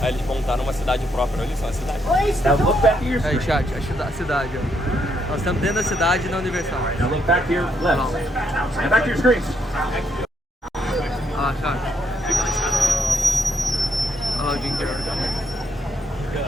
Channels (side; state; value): both; normal; correlation 0.75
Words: Aí eles montaram uma cidade própria. Olha só, a cidade. Aí, chat, a cidade, ó. Nós estamos dentro da cidade na Universal. Now look back to your left. And back to your screens. Ah, chat. Olha lá o Jim Carrey.